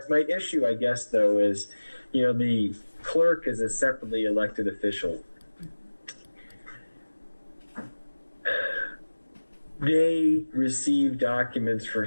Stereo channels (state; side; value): inverted; both; correlation -1.00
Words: issue, I guess, though, is, the clerk is a separately elected official. They receive documents for